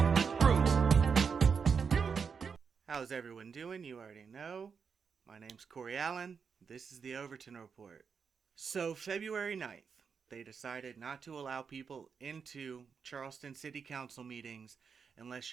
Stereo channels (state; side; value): quieter; left; 6.0 dB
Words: How's everyone doing? You already know. My name's Corey Allen. This is the Overton Report. So February 9th, they decided not to allow people into Charleston City Council meetings unless